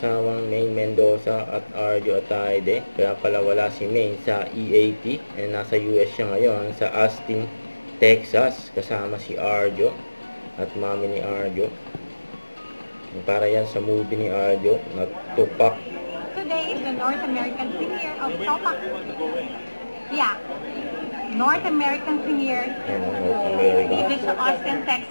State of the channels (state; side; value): inverted; both; correlation -1.00